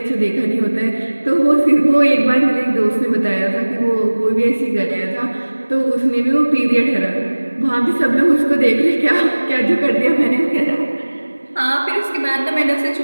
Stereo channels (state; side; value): inverted; both; correlation -1.00